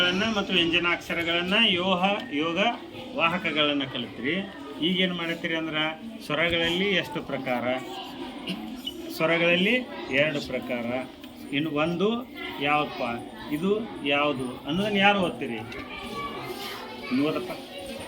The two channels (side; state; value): both; identical; correlation 1.00